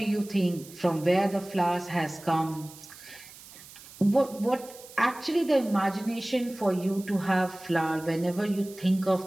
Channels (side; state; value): right; noise; hiss, 19 dB below the sound